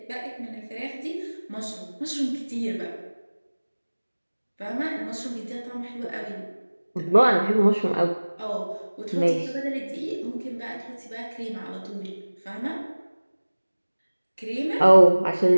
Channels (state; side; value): inverted; both; correlation -1.00